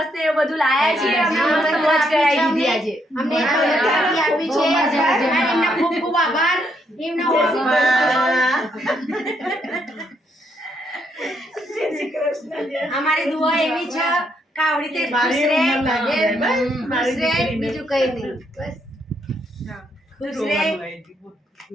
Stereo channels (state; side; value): normal; both; correlation 0.75